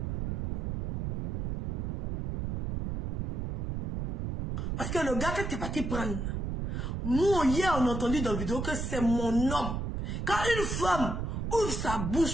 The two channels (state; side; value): noise; right; rumble, 1 dB below the sound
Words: Parce que le gars que tu es parti prendre, nous, hier, on a entendu dans la vidéo que c'est mon homme. Quand une femme ouvre sa